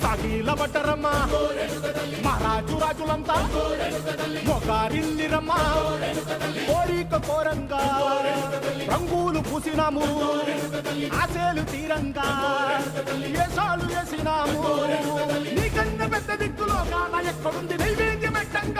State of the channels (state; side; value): identical; both; correlation 1.00